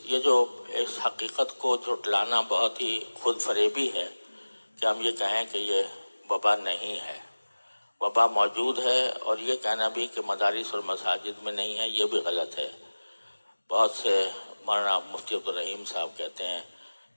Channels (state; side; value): inverted; both; correlation -1.00